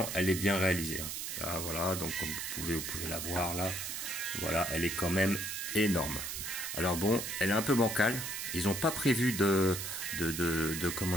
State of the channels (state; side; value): noise; right; hiss, 5 dB below the sound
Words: elle est bien réalisée. Là, voilà, donc comme vous pouvez la voir là. Voilà, elle est quand même énorme. Alors bon, elle est un peu bancale. Ils n'ont pas prévu de